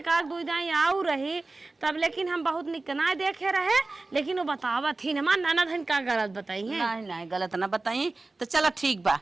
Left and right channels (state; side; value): quieter; left; 3.3 dB